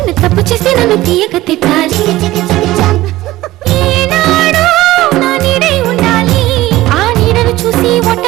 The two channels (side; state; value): left; quieter; 16.9 dB